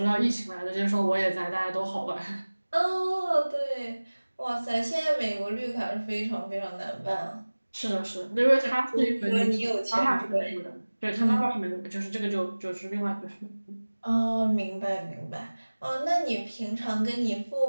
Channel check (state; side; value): inverted; both; correlation -1.00